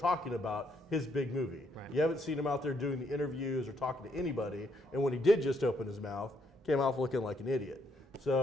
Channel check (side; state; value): both; normal; correlation 0.73